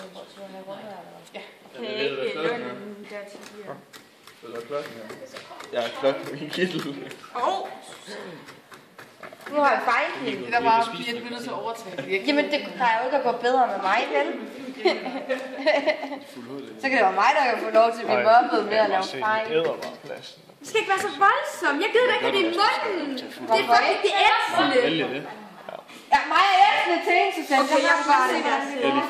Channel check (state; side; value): identical; both; correlation 1.00